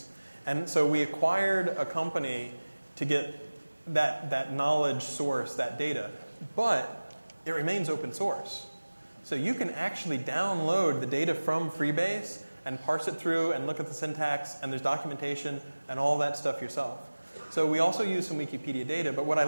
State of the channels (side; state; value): both; inverted; correlation -1.00